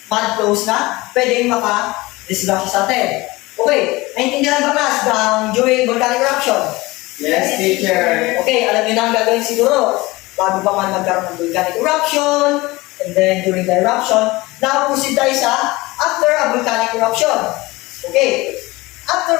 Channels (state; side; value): quieter; right; 21.3 dB